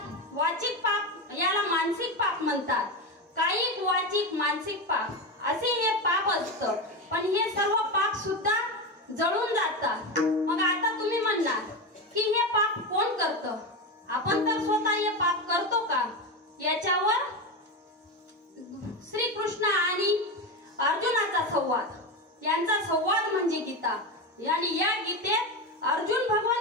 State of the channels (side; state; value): both; normal; correlation 0.17